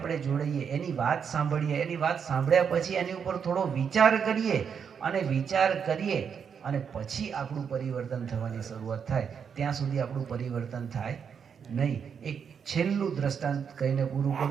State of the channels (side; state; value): left; quieter; 7.0 dB